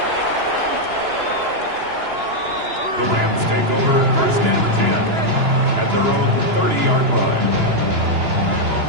The Rams take over first and 10 at their own 30-yard line.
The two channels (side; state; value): left; late; 2.9 ms